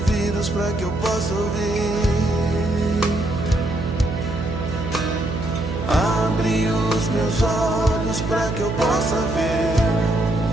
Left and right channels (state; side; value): noise; right; hum, 5 dB below the sound